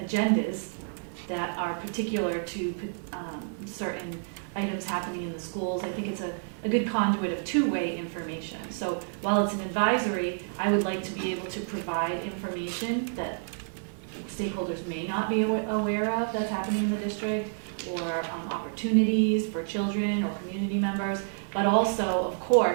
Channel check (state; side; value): silent; left; digital silence